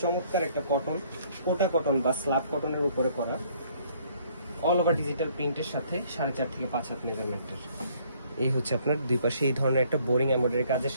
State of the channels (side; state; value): both; inverted; correlation -0.62